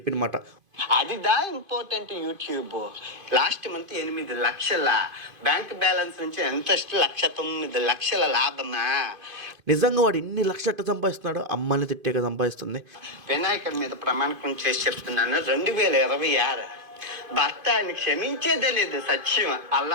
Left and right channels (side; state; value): left; late; 2.5 ms